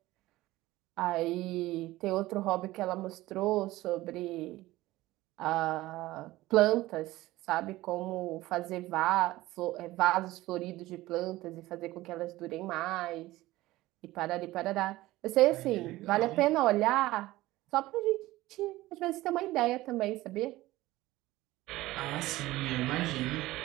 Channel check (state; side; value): quieter; left; 17.6 dB